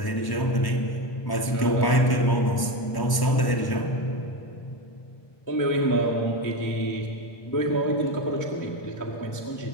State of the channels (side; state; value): right; late; 1.0 ms